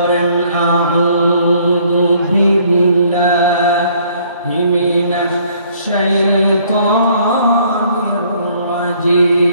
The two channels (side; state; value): both; inverted; correlation -0.62